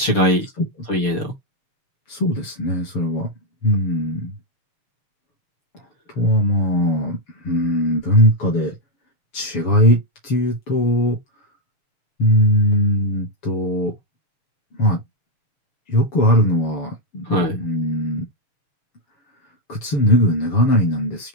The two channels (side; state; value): right; late; 7.0 ms